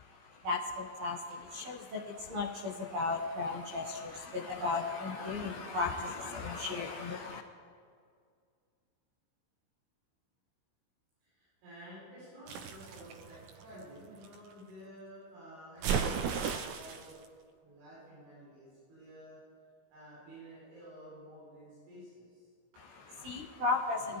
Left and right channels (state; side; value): late; left; 19 ms